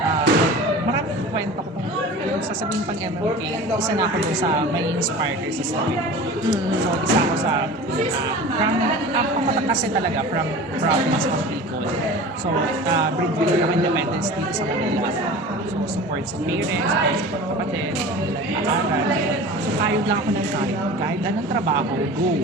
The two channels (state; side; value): normal; both; correlation 0.37